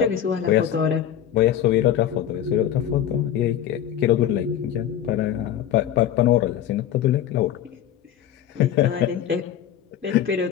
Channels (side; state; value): right; quieter; 10.4 dB